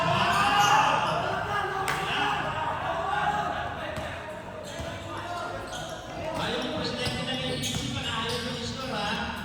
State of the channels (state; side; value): identical; both; correlation 1.00